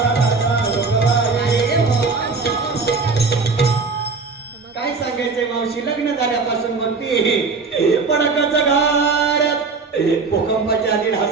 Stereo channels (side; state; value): left; quieter; 4.4 dB